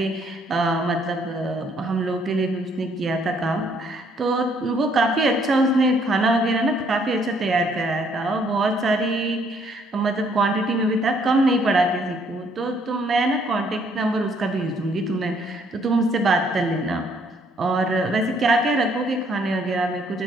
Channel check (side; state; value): both; normal; correlation 0.66